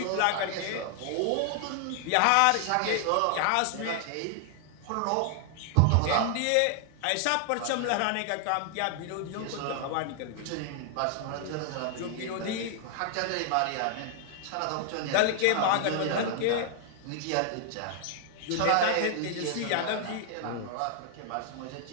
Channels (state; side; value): different; both; correlation 0.00